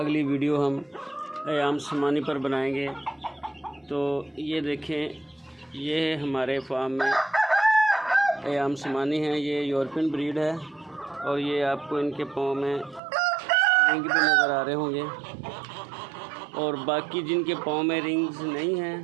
अगली वीडियो हम अयाम समानी पर बनाएंगे। तो ये देखें, ये हमारे फार्म में अयाम समानी है। ये यूरोपियन ब्रीड है और ये आपको इनके पाँव में रिंग भी नज़र आ रहे होंगे। और बाकी जिनके पाँव में रिंग्स नहीं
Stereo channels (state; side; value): drops out; left; at 13.0 s